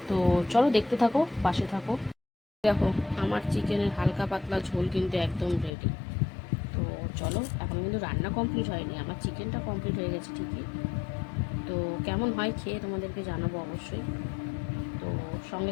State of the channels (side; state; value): right; drops out; at 5.7 s